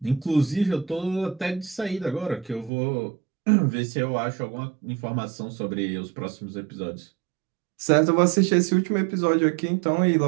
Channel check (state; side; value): drops out; left; at 2.7 s